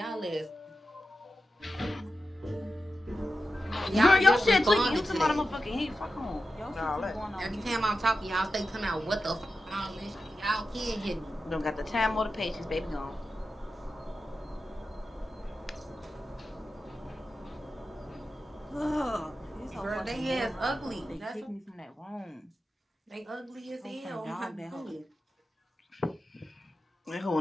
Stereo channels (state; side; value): normal; both; correlation 0.91